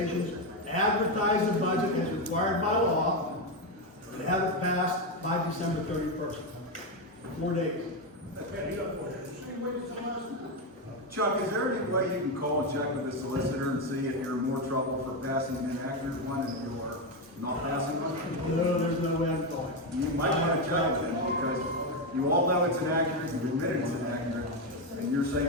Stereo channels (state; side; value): normal; both; correlation 0.09